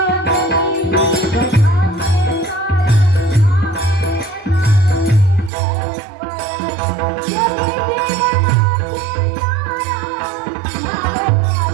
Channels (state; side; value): drops out; left; at 5.5 s